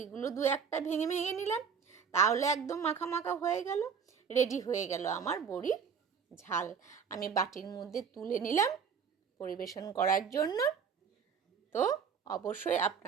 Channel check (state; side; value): quieter; left; 6.5 dB